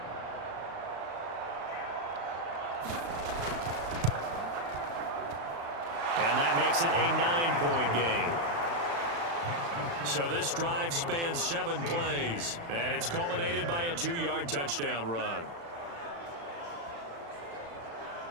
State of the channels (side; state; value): left; late; 35 ms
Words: And that makes it a 9-point game. So this drive spans 7 plays, and it's culminated by a 2-yard touchdown run.